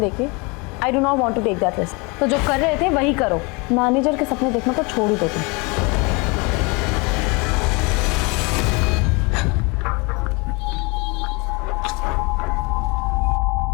I do not want to take that risk. तो जो कर रहे थे वही करो। मैनेजर के सपने देखना तो छोड़ ही दो तुम।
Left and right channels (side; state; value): right; quieter; 28.8 dB